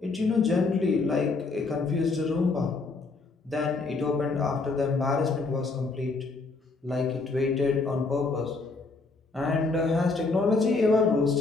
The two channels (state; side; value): quieter; right; 3.8 dB